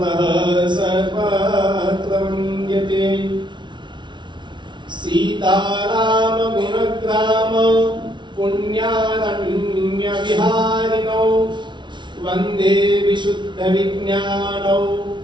सर्वत्र वन्द्यते। सीतारामगुणग्राम पुण्यारण्यविहारिणौ वन्दे विशुद्धविज्ञानौ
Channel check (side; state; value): left; late; 0.23 ms